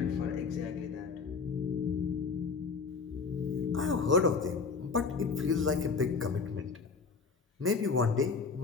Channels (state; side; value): quieter; right; 4.9 dB